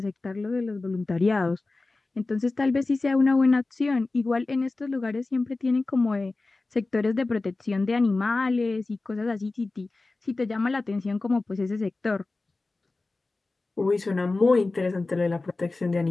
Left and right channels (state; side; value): quieter; right; 3.4 dB